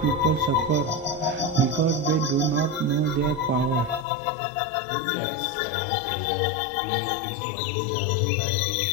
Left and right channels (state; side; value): drops out; right; at 4.0 s